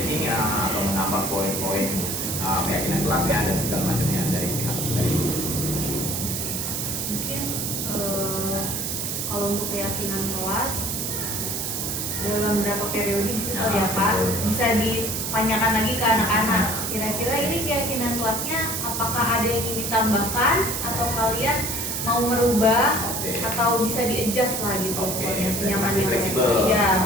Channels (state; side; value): noise; right; hiss, 2 dB below the sound